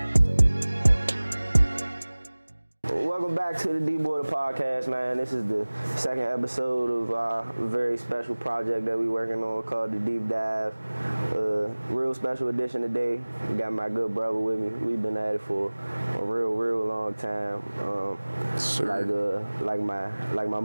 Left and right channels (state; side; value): inverted; both; correlation -1.00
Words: back to the D-Boy Podcast, man. This is the second episode of our very special project that we're working on called the Deep Dive. Real special edition today. Got my good brother with me. We've been at it for a real long time. Like my